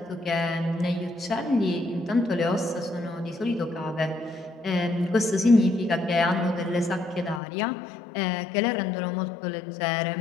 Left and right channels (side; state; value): right; drops out; at 7.4 s